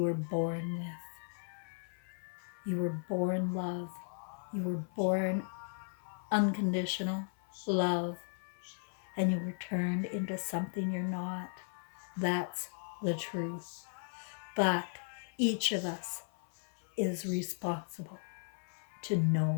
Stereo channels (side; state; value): right; silent; 53 dB below the other